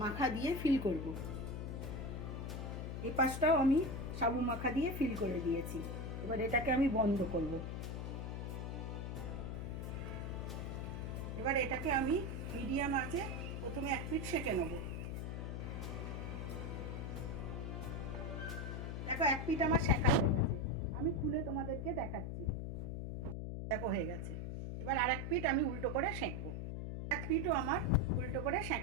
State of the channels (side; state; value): left; noise; hum, 4 dB below the sound